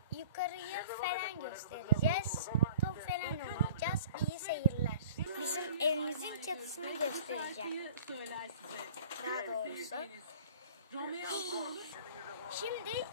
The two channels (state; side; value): inverted; both; correlation -0.47